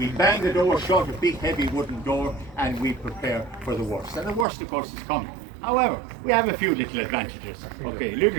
bang the door shut, a big heavy wooden door, and we prepare for the worst. And the worst, of course, is coming. However, we have a few little advantages, okay,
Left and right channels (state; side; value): drops out; left; at 4.5 s